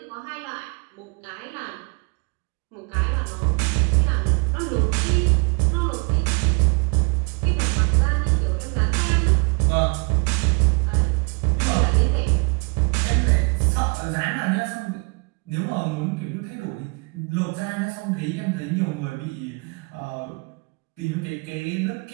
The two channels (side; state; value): left; quieter; 32.2 dB